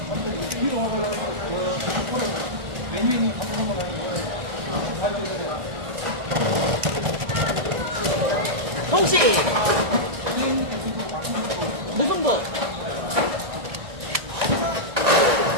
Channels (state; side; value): late; left; 1.6 ms